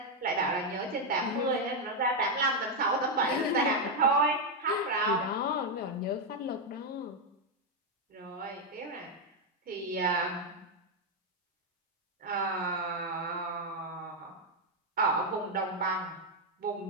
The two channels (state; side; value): normal; both; correlation 0.02